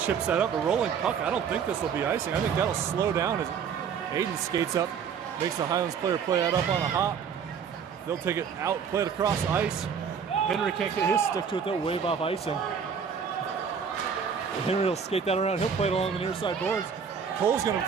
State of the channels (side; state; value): left; quieter; 6.8 dB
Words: chips that up. A rolling puck. I don't think this will be icing. I think that'll slow down as Aiden skates up, makes the Highlands player play that up on a hop. They'll take it out, play it across ice. Henry can't get his stick to it. They'll wave off icing. Henry will skate that around. He'll play it along the near side boards. Cole's going to